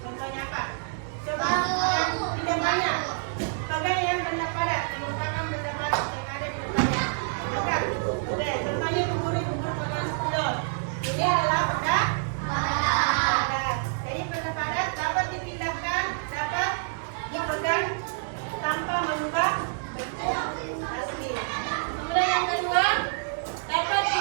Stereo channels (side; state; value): left; silent; digital silence